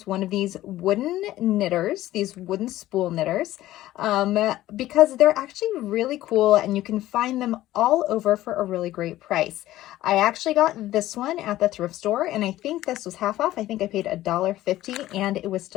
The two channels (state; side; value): quieter; right; 15.1 dB